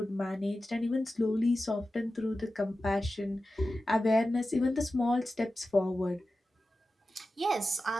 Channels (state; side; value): normal; both; correlation 0.93